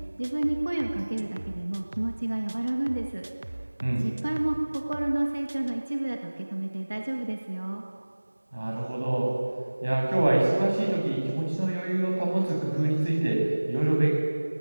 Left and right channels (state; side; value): inverted; both; correlation -1.00